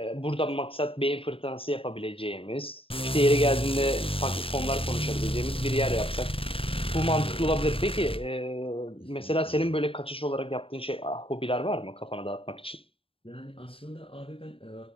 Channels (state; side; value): late; right; 0.27 ms